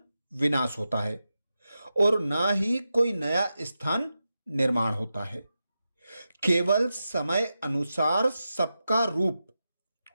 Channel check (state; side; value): inverted; both; correlation -0.90